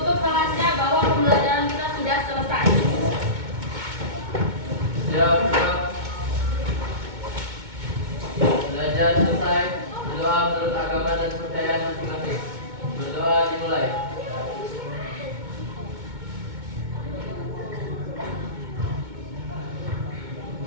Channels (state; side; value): late; left; 2.2 ms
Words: kelasnya bahwa pembelajaran kita sudah selesai. Siap. Belajar selesai. Berdoa menurut agama dan kepercayaan masing-masing. Berdoa dimulai.